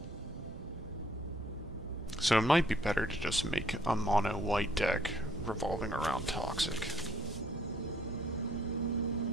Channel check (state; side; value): noise; right; rumble, 13 dB below the sound